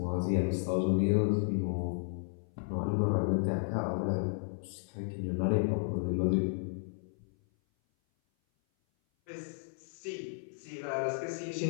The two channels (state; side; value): silent; right; 56 dB below the other